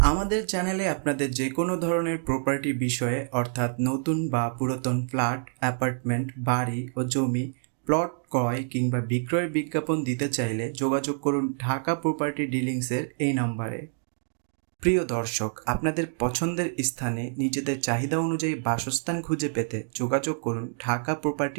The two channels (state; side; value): silent; left; digital silence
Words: আমাদের চ্যানেলে আপনাদের যে কোনো ধরনের প্রপার্টি বিষয়ে অর্থাৎ নতুন বা পুরাতন ফ্ল্যাট, অ্যাপার্টমেন্ট, বাড়ি ও জমি, প্লট ক্রয় কিংবা বিক্রয়ের বিজ্ঞাপন দিতে চাইলে যোগাযোগ করুন ঢাকা প্রপার্টি ডিলিংসের এই নম্বরে। প্রিয় দর্শক, আপনাদের পছন্দের স্থানে নিজেদের চাহিদা অনুযায়ী বাসস্থান খুঁজে পেতে যোগাযোগ করুন ঢাকা